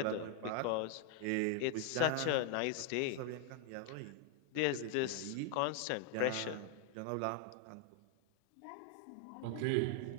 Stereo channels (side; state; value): both; different; correlation 0.01